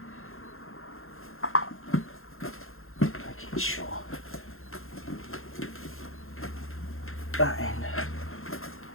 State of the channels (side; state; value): right; late; 0.61 ms